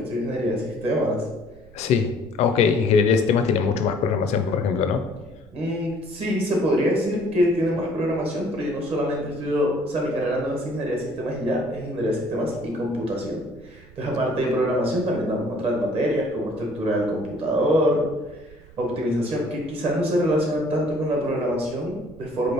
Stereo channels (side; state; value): right; noise; rumble, 22 dB below the sound